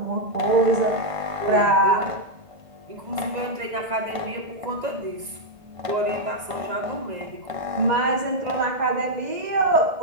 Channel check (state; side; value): late; left; 2.0 ms